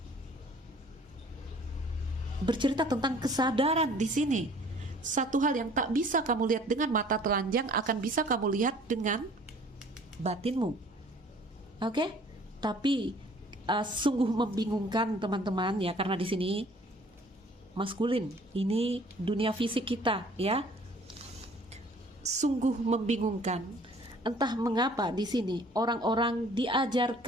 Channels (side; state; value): both; normal; correlation 0.53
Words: Bercerita tentang kesadaran di sini. Satu hal yang tak bisa kamu lihat dengan mata telanjang akan bisa kamu lihat dengan batinmu. Oke? Tapi sungguh membingungkan teman-teman ya, karena di sini maskulin, ini dunia fisik kita ya. Sungguh membingungkan. Entah mengapa di sini orang-orang